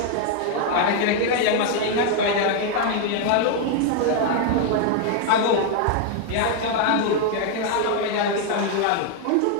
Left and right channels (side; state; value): both; different; correlation 0.00